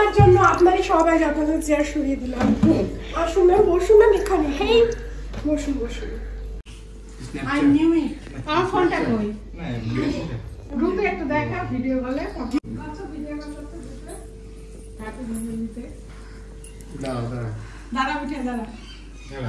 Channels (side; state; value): both; identical; correlation 1.00